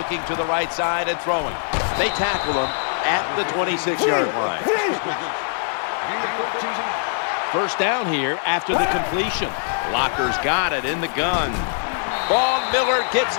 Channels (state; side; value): silent; right; digital silence